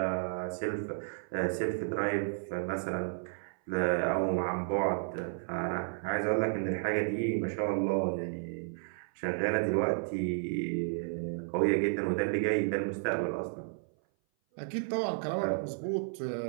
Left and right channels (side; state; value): left; silent; 56 dB below the other